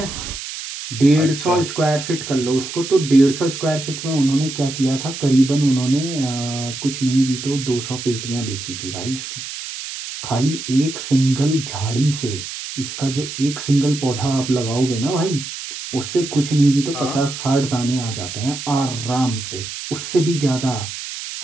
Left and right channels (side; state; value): right; noise; hiss, 8 dB below the sound